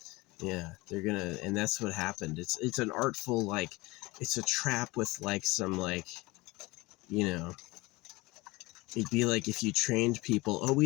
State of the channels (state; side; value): quieter; right; 22.1 dB